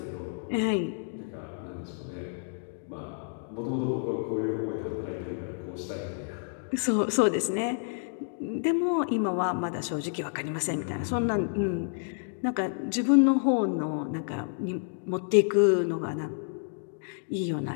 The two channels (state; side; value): silent; right; digital silence